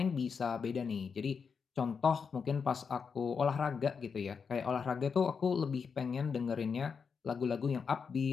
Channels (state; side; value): quieter; right; 5.9 dB